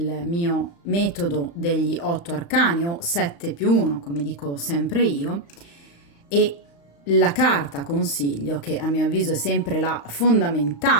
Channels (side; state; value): right; late; 35 ms